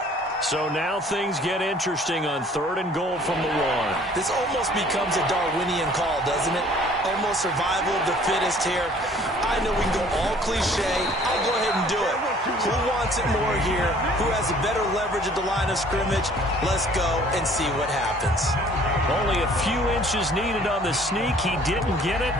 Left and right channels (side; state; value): both; normal; correlation 0.54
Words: So now things get interesting on 3rd and goal from the 1. This almost becomes a Darwinian call, doesn't it? Almost survival of the fittest here. I know we can go all cliche. I'll go ahead and do it. Who wants it more here? Who has a better leverage at the line of scrimmage? Let's go and see what happens. Only a few inches needed on the sneak. He didn't get it,